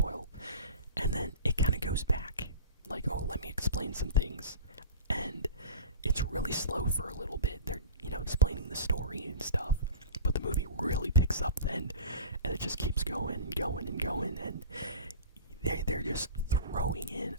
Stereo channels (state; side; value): inverted; both; correlation -0.35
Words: and then it kind of goes back. Like, oh, let me explain some things, and it's really slow for a little bit. They're explaining the story and stuff, but the movie really picks up then, and it just keeps going and going and going, and they're just throwing in